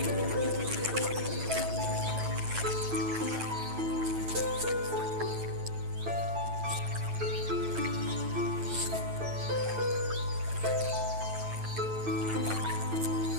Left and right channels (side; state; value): left; late; 9.1 ms